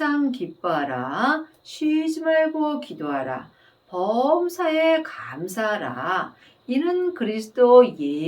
기뻐하라. 쉬지 말고 기도하라. 범사에 감사하라. 이는 그리스도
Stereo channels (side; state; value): both; identical; correlation 1.00